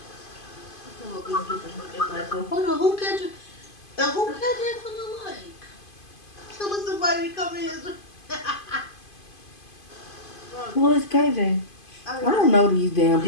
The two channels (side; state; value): right; late; 2.5 ms